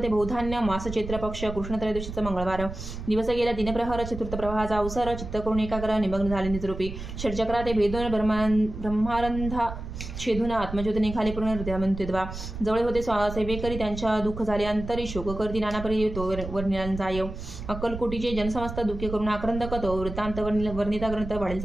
बहुधान्य, मास चैत्र पक्ष, कृष्ण त्रयोदशीचा मंगळवार. दिवस गेला दिनप्रहर, चतुर्थ प्रवाहाचा अवसर. चित्त करून एकाग्र निमग्न झाले निजरूपी. षटचक्रा ते भेदून ब्रह्मारंधा छेदून आत्मज्योत निघाले पूर्ण हृदयामंत्वा. जवळ होते सेवेकरी, त्यांच्या दुःख झाले अंतरी. शोक करती नानापरी तो वर्णिला जाय. अक्कलकोटीचे जनसमस्त दुःखे करून आक्रंदक, तो वृत्तांत वर्णिता ग्रंथ वाढेल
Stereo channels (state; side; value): noise; right; rumble, 9 dB below the sound